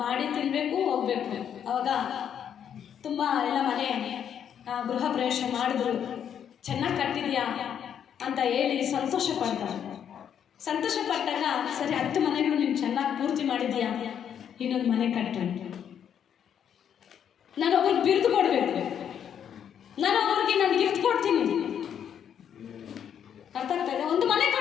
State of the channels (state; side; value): quieter; right; 8.7 dB